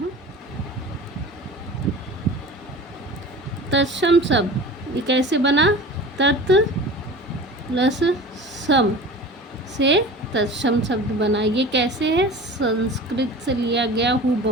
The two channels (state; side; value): normal; both; correlation 0.37